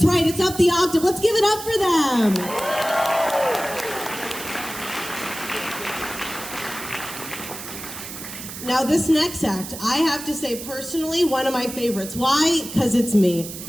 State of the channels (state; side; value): noise; right; hiss, 10 dB below the sound